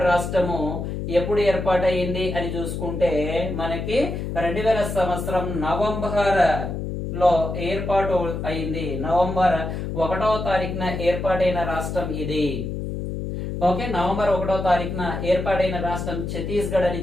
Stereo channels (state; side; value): noise; left; hum, 4 dB below the sound